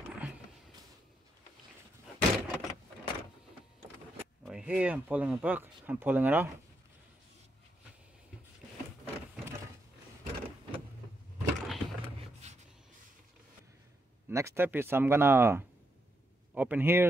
Right here, I'm pulling it back, I'm pulling it out. Next step is I'm gonna open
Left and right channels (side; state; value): both; normal; correlation 0.80